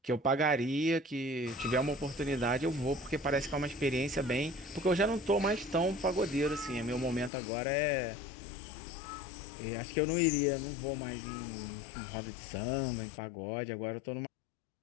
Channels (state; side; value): drops out; right; at 7.3 s